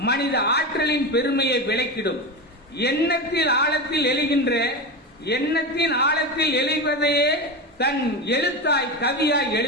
மனித ஆற்றலின் பெருமையை விளக்கிடும். எண்ணத்தில் ஆழத்தில் எழுவதையே தன் எழுத்தாய் கவியாய்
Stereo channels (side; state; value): both; normal; correlation 0.20